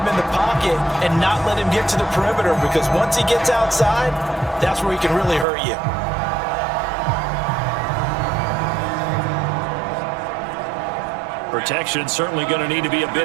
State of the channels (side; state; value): left; drops out; at 5.5 s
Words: in the pocket and not let him get to the perimeter, because once he gets outside, that's where he can really hurt you. Protection certainly going to need to be a